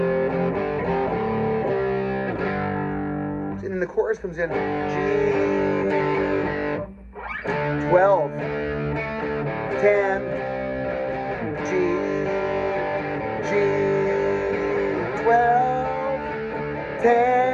And then the chorus comes in G 12 10 G 12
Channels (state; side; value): identical; both; correlation 1.00